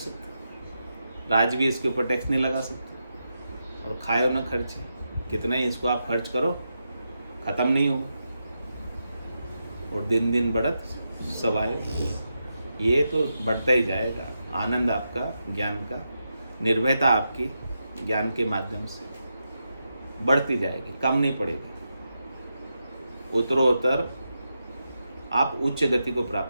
राज भी इसके ऊपर टैक्स नहीं लगा सकता, और खाए न खर्चे। कितना ही इसको आप खर्च करो खत्म नहीं होगा, और दिन दिन बढ़त सवाए। ये तो बढ़ता ही जाएगा। आनंद आपका ज्ञान का, निर्भयता आपकी ज्ञान के माध्यम से बढ़ती जाएगी, कम नहीं पड़ेगी। उत्तरोत्तर आप उच्च गति को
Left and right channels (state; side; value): inverted; both; correlation -0.86